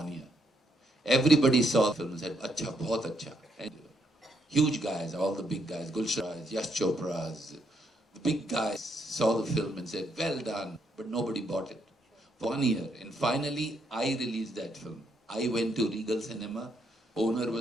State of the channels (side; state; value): both; normal; correlation 0.75